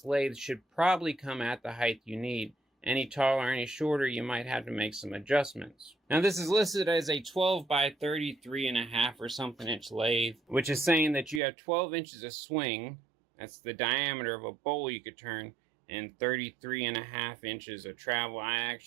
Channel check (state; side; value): drops out; left; at 11.4 s